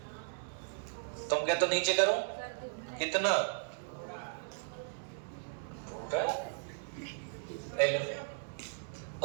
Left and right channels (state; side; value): silent; left; digital silence